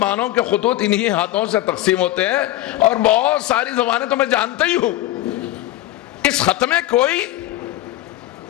کے خطوط انہی ہاتھوں سے تقسیم ہوتے ہیں، اور بہت ساری زبانیں تو میں جانتا ہی ہوں. اس خط میں کوئی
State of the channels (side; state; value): right; quieter; 15.2 dB